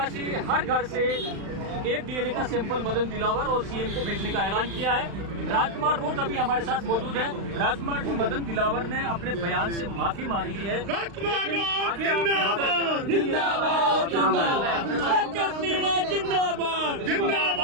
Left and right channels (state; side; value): late; left; 35 ms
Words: हर घर से एक डीएनए का सैंपल मदन दिलावर और सीएम को भेजने का ऐलान किया है। राजकुमार रोज अभी हमारे साथ मौजूद है। राजकुमार जी, मदन दिलावर ने अपने बयान से माफी मांग ली है। राजकुमार रोज जिंदाबाद जिंदाबाद जिंदाबाद